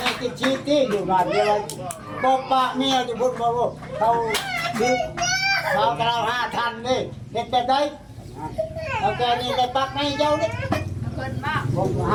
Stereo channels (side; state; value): both; identical; correlation 1.00